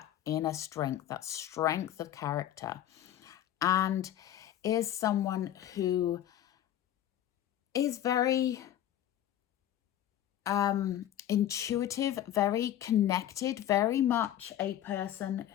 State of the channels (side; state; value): right; quieter; 11.7 dB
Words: inner strength, that strength of character, and is someone who is very intuitive, very connected, very much a person